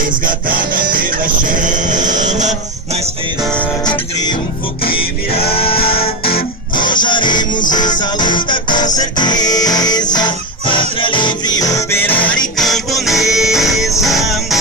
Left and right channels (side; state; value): both; normal; correlation 0.16